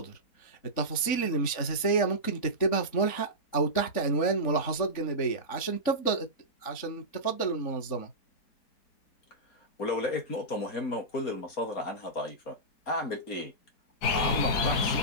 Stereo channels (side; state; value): right; late; 3.6 ms